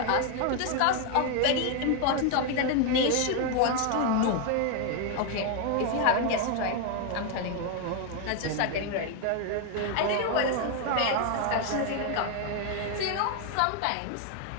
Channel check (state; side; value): different; both; correlation 0.01